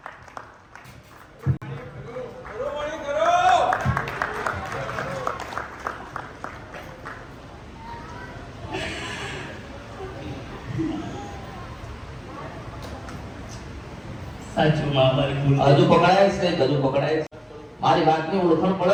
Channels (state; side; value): identical; both; correlation 1.00